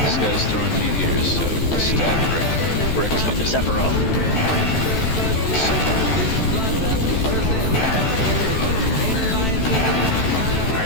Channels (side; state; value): right; late; 14 ms